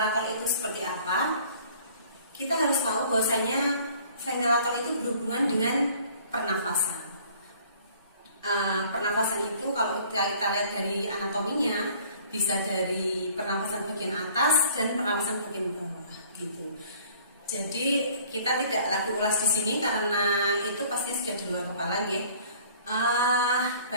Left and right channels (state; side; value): inverted; both; correlation -0.53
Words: itu seperti apa, kita harus tahu bahwasanya ventilator itu berhubungan dengan pernafasan. Pernafasan itu kalau kita lihat dari anatominya bisa dari pernafasan bagian atas dan pernafasan bagian bawah gitu. Jadi kita tidak lagi ulas di sini karena itu pasti sudah di luar kepala ya.